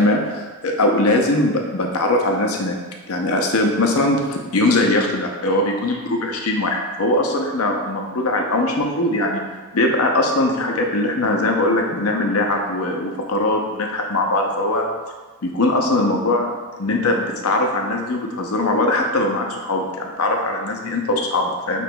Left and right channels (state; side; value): normal; both; correlation 0.11